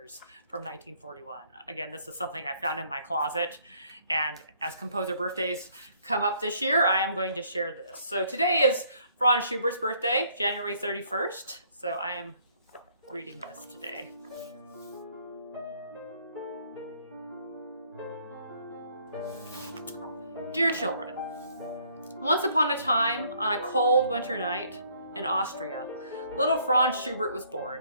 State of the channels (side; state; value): both; inverted; correlation -0.64